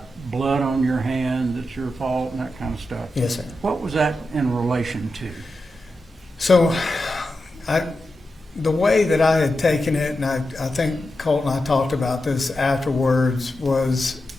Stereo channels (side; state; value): both; normal; correlation 0.89